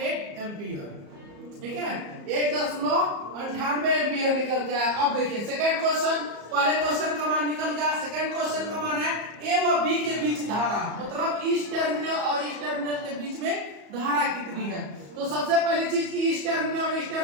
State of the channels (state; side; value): late; left; 34 ms